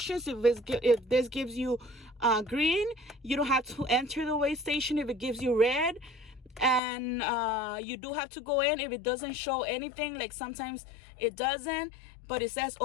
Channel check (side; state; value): right; drops out; at 6.8 s